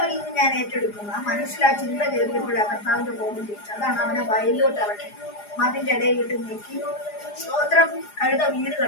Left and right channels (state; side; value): late; right; 4.9 ms